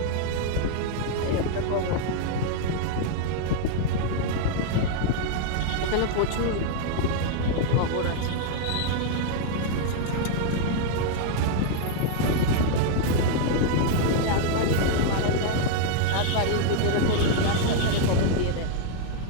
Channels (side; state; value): both; different; correlation 0.00